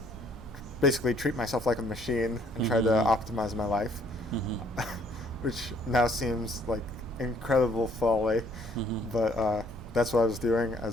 basically treat myself like a machine and try to optimize my life, which now seems like incredible folly, but that's what I was doing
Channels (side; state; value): both; normal; correlation 0.63